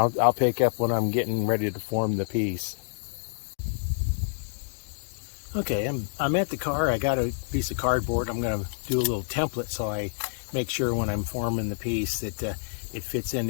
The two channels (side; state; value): right; silent; digital silence